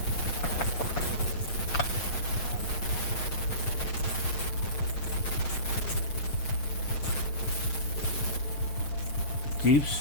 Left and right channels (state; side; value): late; right; 7.1 ms